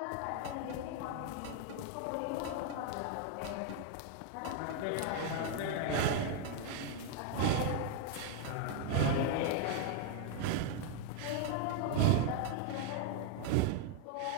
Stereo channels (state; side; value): different; both; correlation 0.00